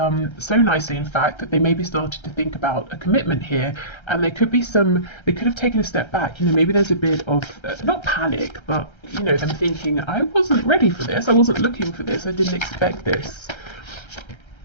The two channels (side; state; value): right; late; 1.3 ms